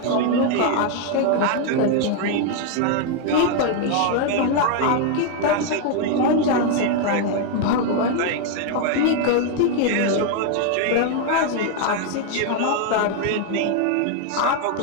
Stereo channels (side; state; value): both; different; correlation 0.00